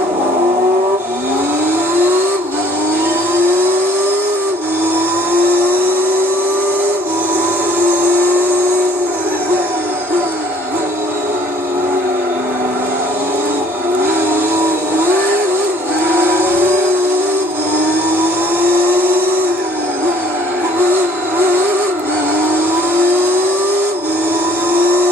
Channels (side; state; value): both; normal; correlation 0.57